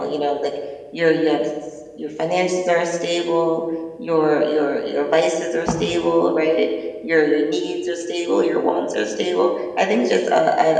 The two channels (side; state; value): both; identical; correlation 1.00